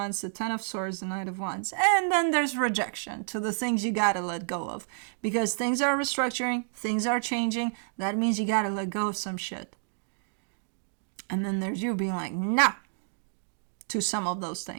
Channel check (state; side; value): silent; left; digital silence